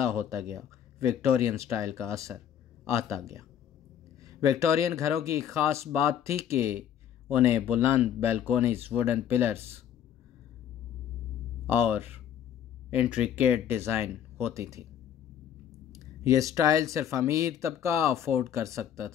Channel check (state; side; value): quieter; right; 9.6 dB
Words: ہوتا گیا وکٹورین سٹائل کا اثر آتا گیا۔ وکٹورین گھروں کی خاص بات تھی کہ انہیں بلند بیلکونیز، ووڈن پلرز اور انٹریکیٹ ڈیزائن ہوتی تھی۔ یہ سٹائل صرف امیر طبقہ افورڈ کر سکتا